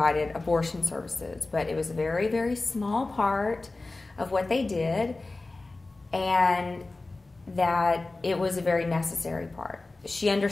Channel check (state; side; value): quieter; right; 3.2 dB